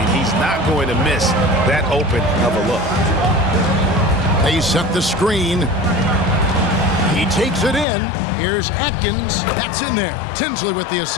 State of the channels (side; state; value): right; drops out; at 7.9 s